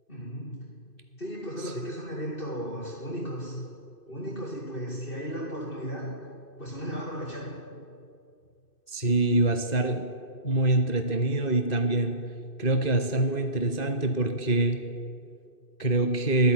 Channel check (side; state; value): right; late; 2.6 ms